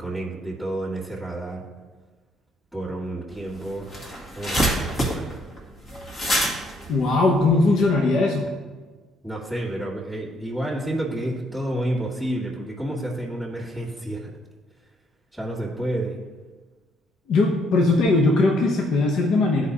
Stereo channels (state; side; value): normal; both; correlation 0.70